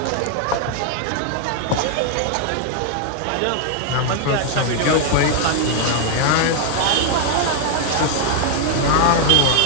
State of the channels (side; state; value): both; different; correlation 0.00